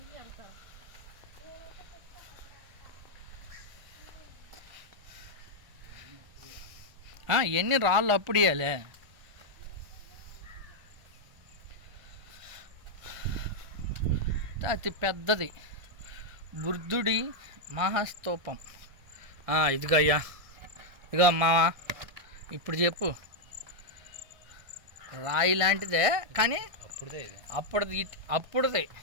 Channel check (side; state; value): left; late; 1.5 ms